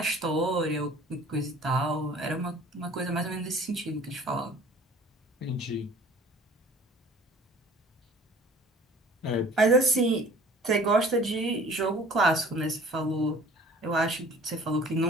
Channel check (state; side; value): normal; both; correlation 0.49